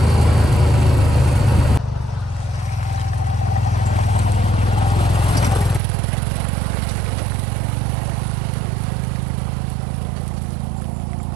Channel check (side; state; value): left; drops out; at 5.8 s